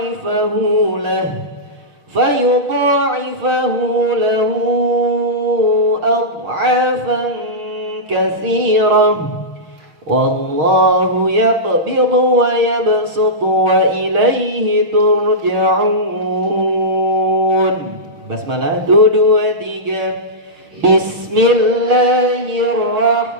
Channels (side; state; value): left; late; 6.5 ms